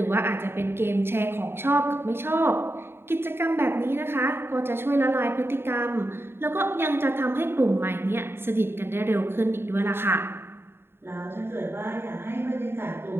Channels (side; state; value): left; late; 0.11 ms